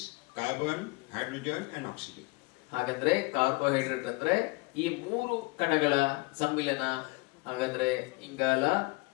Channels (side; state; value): right; quieter; 26.0 dB